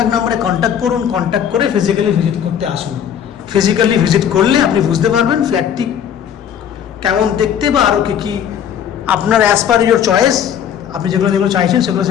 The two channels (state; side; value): quieter; right; 9.0 dB